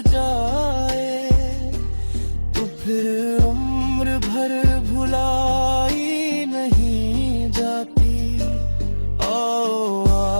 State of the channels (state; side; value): inverted; both; correlation -1.00